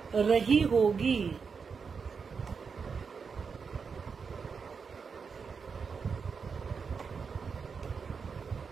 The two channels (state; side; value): quieter; left; 5.6 dB